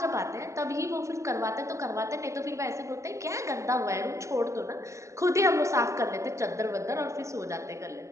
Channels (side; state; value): left; late; 0.15 ms